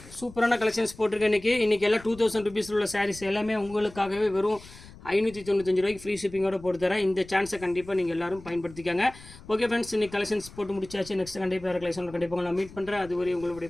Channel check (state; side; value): noise; left; rumble, 19 dB below the sound